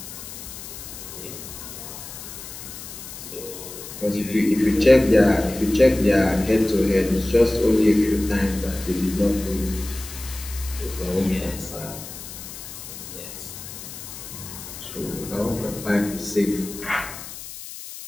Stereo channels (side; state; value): left; noise; hiss, 12 dB below the sound